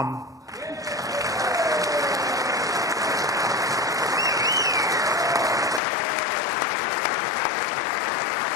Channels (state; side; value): drops out; right; at 5.8 s